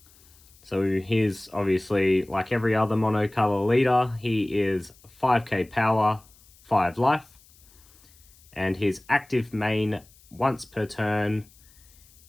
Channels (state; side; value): noise; left; hiss, 27 dB below the sound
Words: So he's obviously, like every other monocolor leader, he is 5k power, 5 life. And his active main, once per turn,